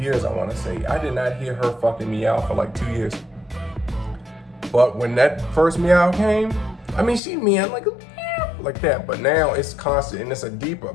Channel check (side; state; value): right; drops out; at 7.2 s